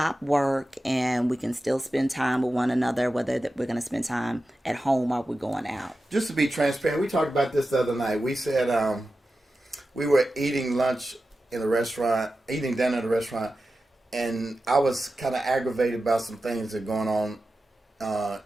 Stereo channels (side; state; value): both; normal; correlation 0.93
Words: work and we can still spend time with one another, whether that we're going to spend time at home or we're going out. Just to be transparent, we talked about this the other night. We said we were eating lunch in a restaurant, eating dinner at a restaurant, and I was kind of aggravated about some things that are going on